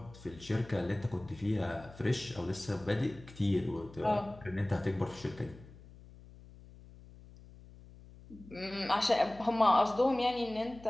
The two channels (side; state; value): left; noise; hum, 20 dB below the sound